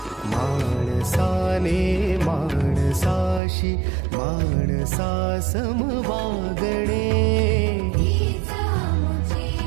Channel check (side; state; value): left; drops out; at 3.4 s